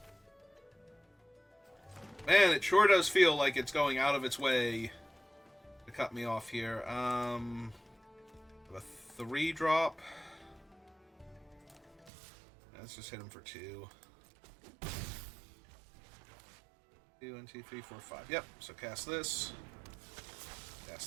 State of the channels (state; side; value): drops out; left; at 12.1 s